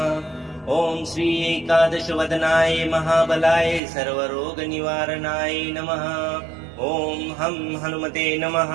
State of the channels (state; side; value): drops out; left; at 3.8 s